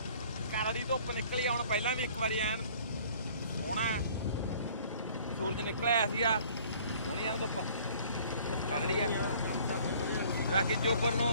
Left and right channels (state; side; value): inverted; both; correlation -0.53